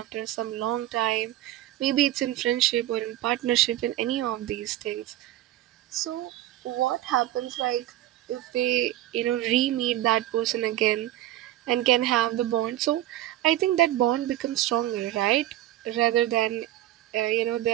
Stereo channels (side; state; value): left; quieter; 14.2 dB